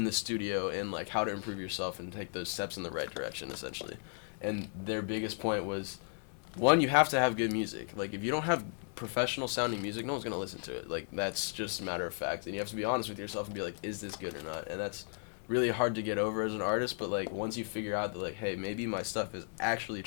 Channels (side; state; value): right; silent; 54 dB below the other